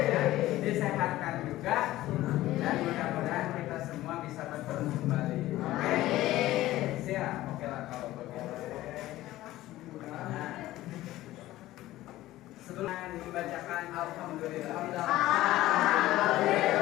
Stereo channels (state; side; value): quieter; right; 15.9 dB